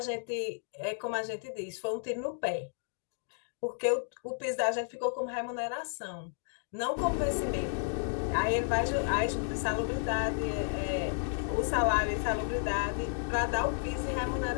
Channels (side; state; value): right; silent; digital silence